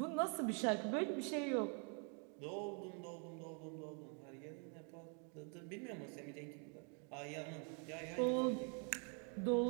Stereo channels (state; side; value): quieter; left; 38.8 dB